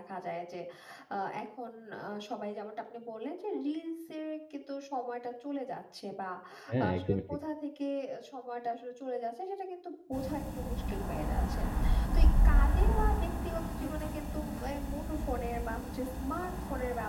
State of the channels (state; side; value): identical; both; correlation 1.00